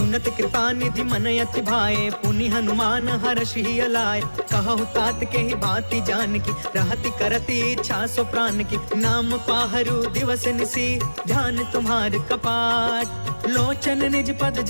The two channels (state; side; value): inverted; both; correlation -1.00